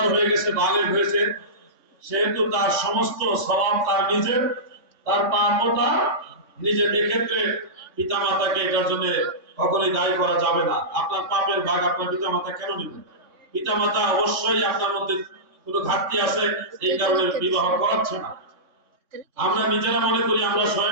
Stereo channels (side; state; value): left; late; 3.6 ms